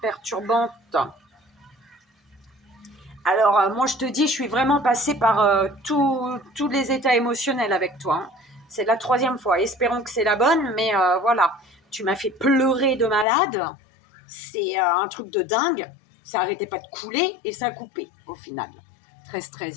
Alors, moi, je te dis, je suis vraiment passée par tous les états émotionnels avec toi, hein. C'est la 3e fois. Espérons que c'est la bonne, mais voilà. Tu m'as fait pleurer de malade. C'est un truc de dingue. Ça n'arrêtait pas de couler et ça a coupé au final.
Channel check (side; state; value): right; drops out; at 13.2 s